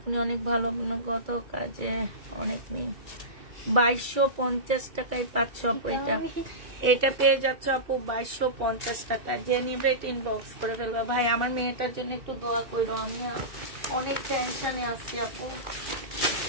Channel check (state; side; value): late; left; 2.3 ms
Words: অনেক ভালো, গত কাজে অনেক মেয়ে, 2250 টাকায় পাচ্ছ আপু। এটা পেয়ে যাচ্ছ আপু 2250 টাকা। যে নিবে এটা ইনবক্স করে ফেলবা। ভাই আমার মেয়েটার জন্য একটু দোয়া করো, আমি অনেক টেনশনে আছি আপু।